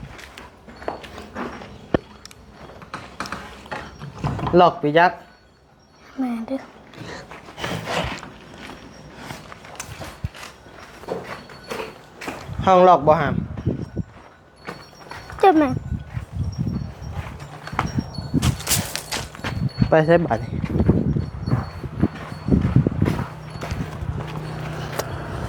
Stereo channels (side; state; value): both; identical; correlation 1.00